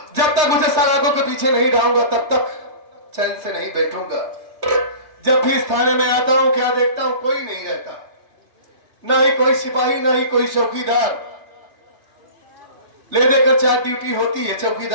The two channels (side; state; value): left; late; 3.3 ms